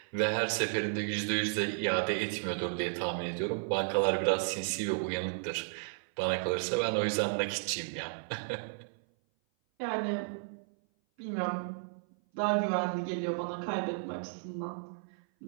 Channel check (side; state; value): left; silent; 56 dB below the other